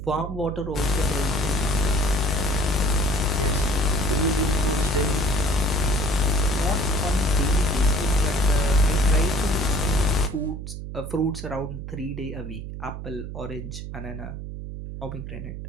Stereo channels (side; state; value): right; noise; hum, 8 dB below the sound